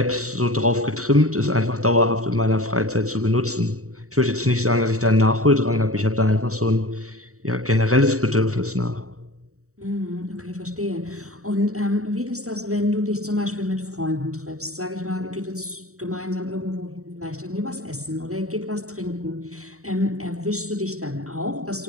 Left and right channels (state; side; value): late; left; 0.65 ms